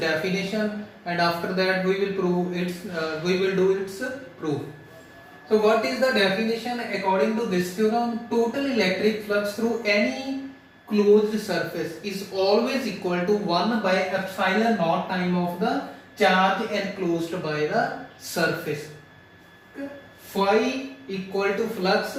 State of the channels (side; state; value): both; identical; correlation 1.00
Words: and after that we will do its proof. So what is the definition according to this theorem? Total electric flux through any closed surface is always equal to 1 by epsilon naught time of the charge enclosed by the surface. Phi equal to flux